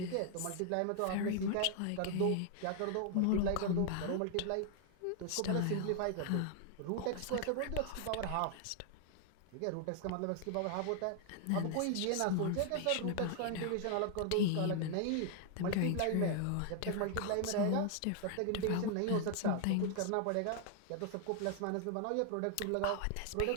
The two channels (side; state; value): both; different; correlation 0.00